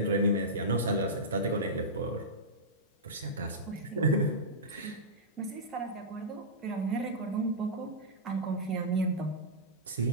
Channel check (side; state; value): both; normal; correlation -0.14